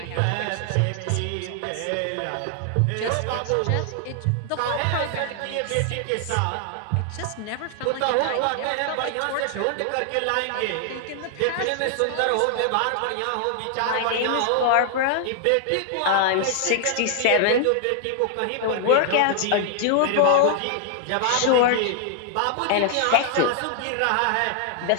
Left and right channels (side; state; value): both; different; correlation 0.00